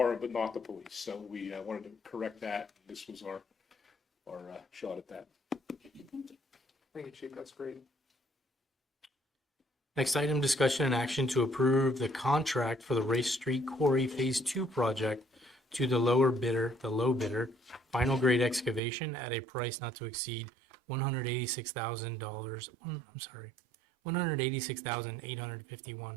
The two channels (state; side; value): drops out; left; at 18.8 s